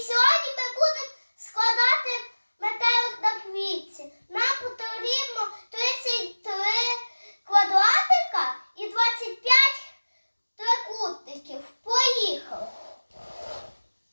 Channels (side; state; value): both; inverted; correlation -1.00